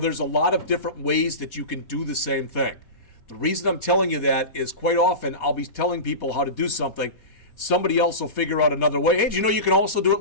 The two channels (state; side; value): late; right; 4.2 ms